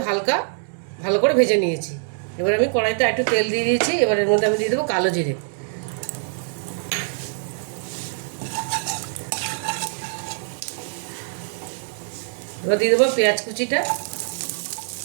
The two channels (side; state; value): left; silent; digital silence